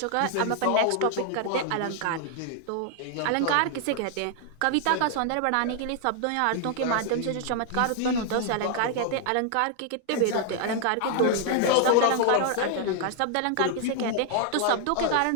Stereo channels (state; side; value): different; both; correlation 0.00